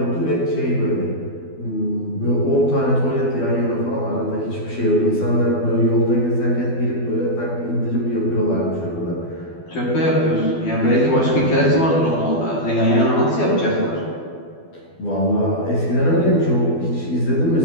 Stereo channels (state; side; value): late; right; 12 ms